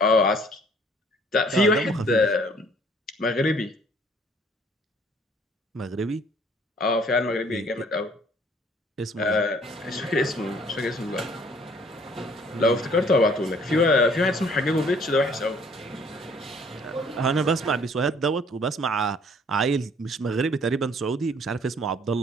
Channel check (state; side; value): normal; both; correlation 0.58